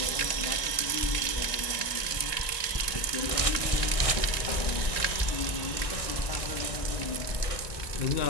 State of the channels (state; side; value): late; right; 1.9 ms